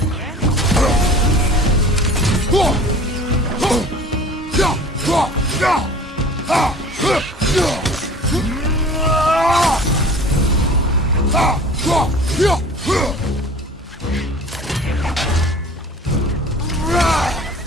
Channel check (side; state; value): both; normal; correlation 0.44